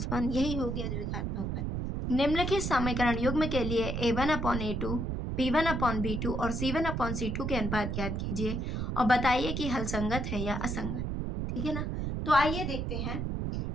1, यही हो गया द्विघात बहुपद। निम्नलिखित समीकरण युग्म के लिए A1/A2, B1/B2 और C1/C2 के अनुपात ज्ञात कीजिए और बताइए कि हल संगत है या असंगत, ठीक है ना। तो आइए देखते हैं।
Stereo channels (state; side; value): noise; right; rumble, 2 dB below the sound